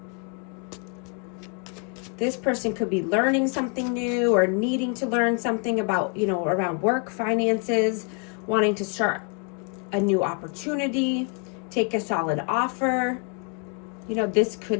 This person could be learning something new or needing to learn something about, you know, around work, finances, wanting to start a new opportunity, take a solid offer. You know, this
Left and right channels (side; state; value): right; quieter; 37.0 dB